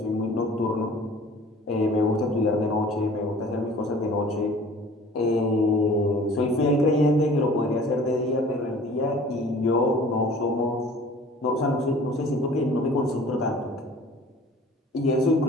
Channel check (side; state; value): both; normal; correlation 0.48